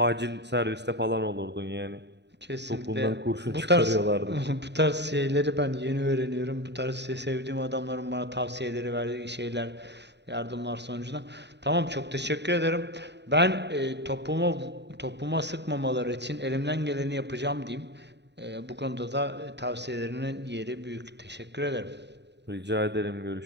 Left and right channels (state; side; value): late; left; 0.50 ms